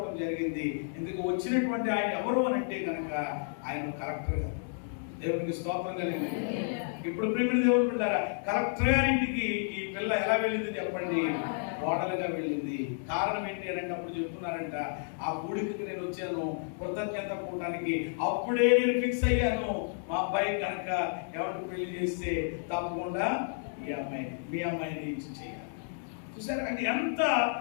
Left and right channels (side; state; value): right; silent; digital silence